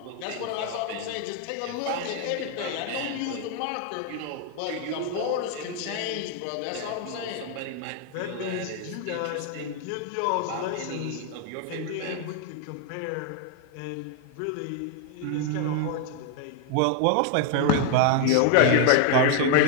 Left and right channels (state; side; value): different; both; correlation 0.00